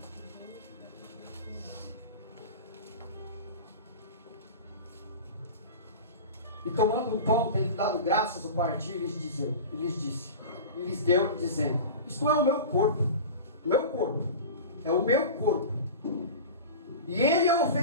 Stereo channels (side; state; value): both; inverted; correlation -0.31